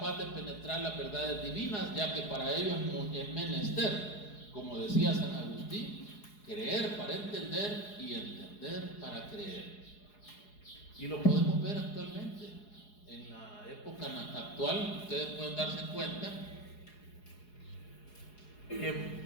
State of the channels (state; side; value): late; right; 4.8 ms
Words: de penetrar las verdades divinas, ya que para ello es menester, como decía San Agustín, creer para entender y entender para creer. Y lo podemos ver actualmente. En la época actual, ustedes pueden darse cuenta que